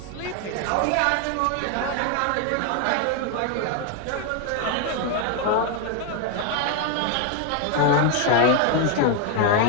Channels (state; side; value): different; both; correlation 0.01